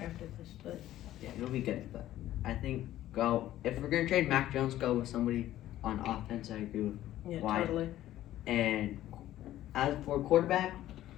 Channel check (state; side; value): quieter; right; 13.6 dB